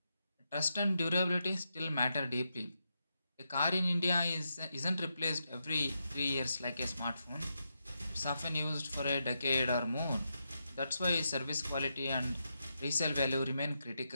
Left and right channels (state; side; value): inverted; both; correlation -0.84